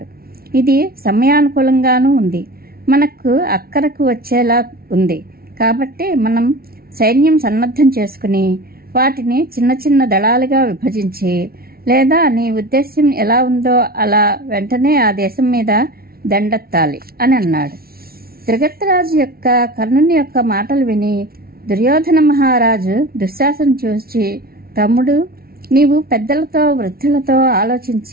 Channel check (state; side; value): late; left; 0.44 ms